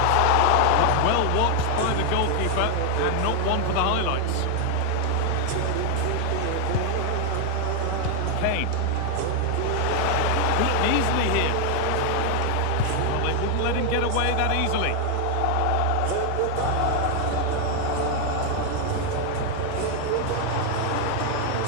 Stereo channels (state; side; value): different; both; correlation 0.01